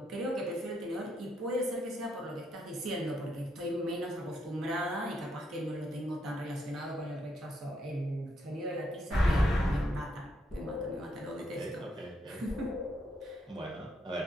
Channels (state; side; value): normal; both; correlation 0.77